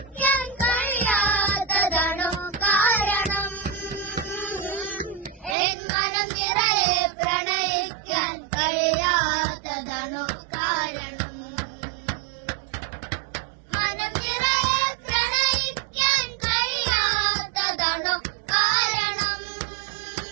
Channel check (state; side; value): drops out; left; at 5.6 s